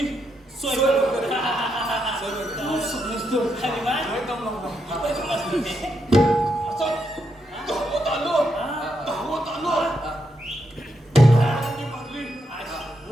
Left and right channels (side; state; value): both; normal; correlation 0.81